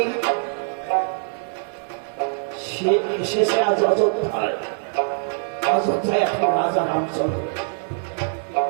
শেষে আজ অযোধ্যায় এখন রাজা রামচন্দ্র।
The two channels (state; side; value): silent; left; digital silence